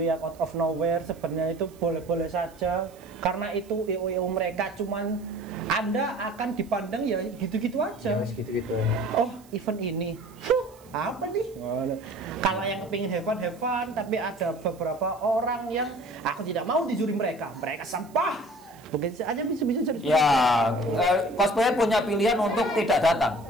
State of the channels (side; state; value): right; noise; hiss, 27 dB below the sound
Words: yang out of nowhere sebenarnya itu boleh-boleh saja, karena itu IO mereka cuman Anda akan dipandang ya gitu-gitu aja. Gitu-gitu. Oh, event ini. Apa nih? Kalau yang kepingin have fun, tapi ada beberapa orang yang aku tidak mau di juri mereka sampah. Begitu aja bisa jadi. Ya, cosplayer punya pilihan untuk tidak datang